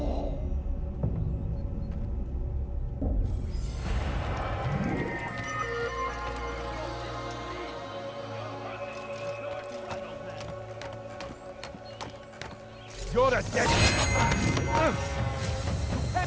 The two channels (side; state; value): both; identical; correlation 1.00